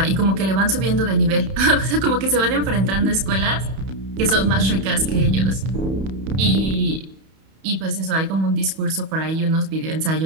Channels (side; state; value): left; late; 31 ms